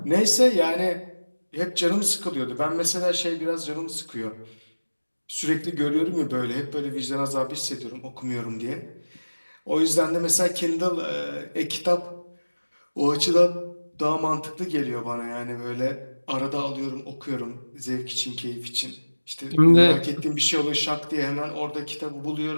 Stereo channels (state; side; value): inverted; both; correlation -1.00